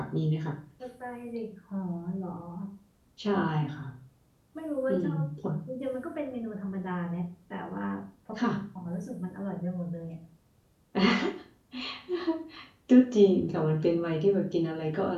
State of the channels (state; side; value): identical; both; correlation 1.00